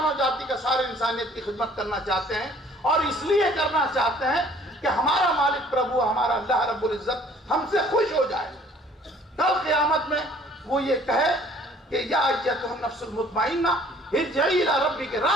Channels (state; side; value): normal; both; correlation 0.56